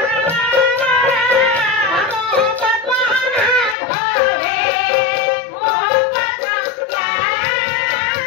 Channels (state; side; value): drops out; right; at 3.8 s